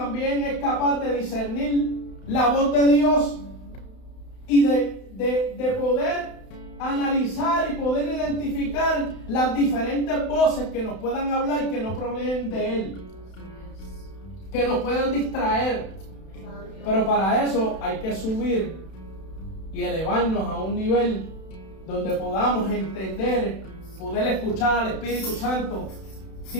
es capaz de discernir la voz de Dios y de poder analizar y poder identificar las diferentes voces que nos puedan hablar, que no provienen de Él, que nos puedan distraer. Pero para eso hay que subir y elevarnos a un nivel donde podamos entender, poder escuchar al Espíritu Santo,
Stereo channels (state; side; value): late; right; 31 ms